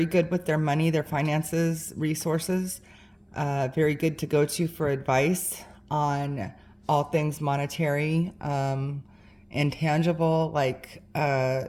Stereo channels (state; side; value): identical; both; correlation 1.00